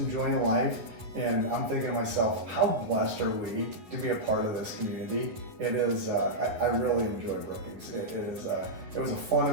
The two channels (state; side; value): late; left; 10 ms